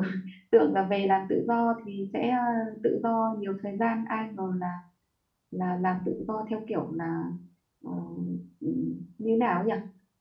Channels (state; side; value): identical; both; correlation 1.00